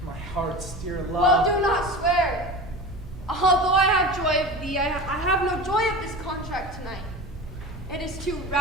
My heart's dear love. Well, do not swear. Although I have joy of thee, I have no joy of this contract tonight. It is too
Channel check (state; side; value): normal; both; correlation 0.32